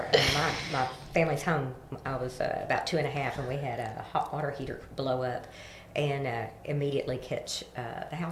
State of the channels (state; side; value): identical; both; correlation 1.00